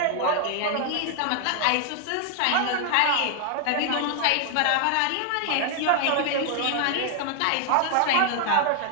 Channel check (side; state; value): both; different; correlation 0.00